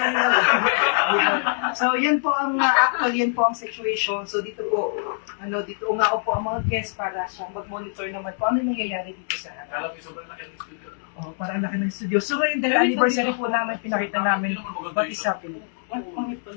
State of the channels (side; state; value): right; silent; digital silence